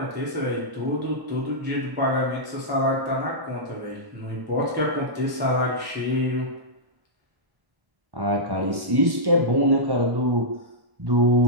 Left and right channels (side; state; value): left; late; 1.1 ms